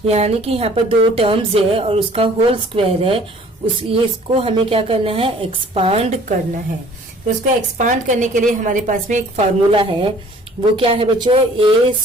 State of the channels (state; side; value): normal; both; correlation 0.53